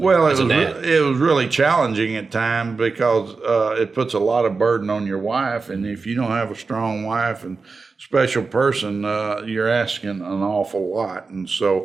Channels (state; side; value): quieter; left; 4.4 dB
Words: Well, it was really challenging at times because it puts a lot of burden on your wife, and if you don't have a strong wife and special person, you're asking an awful lot. And